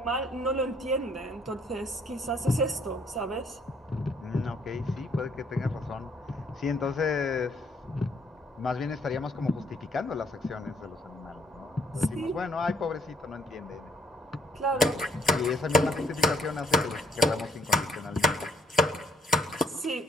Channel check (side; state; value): both; normal; correlation 0.67